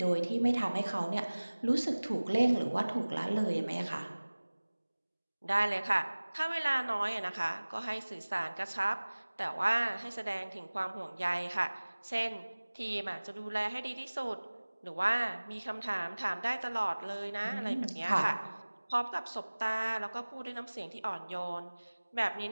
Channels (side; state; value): both; inverted; correlation -1.00